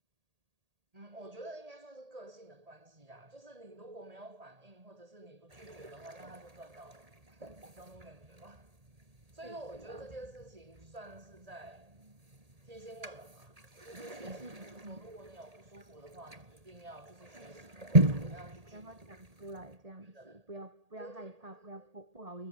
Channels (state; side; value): late; left; 1.8 ms